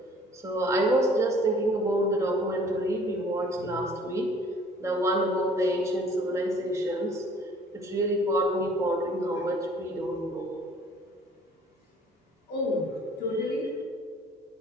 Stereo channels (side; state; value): both; normal; correlation 0.54